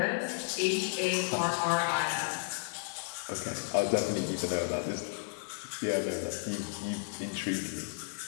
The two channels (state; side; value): silent; right; digital silence